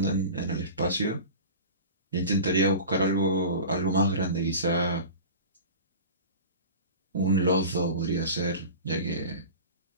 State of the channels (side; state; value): both; inverted; correlation -0.35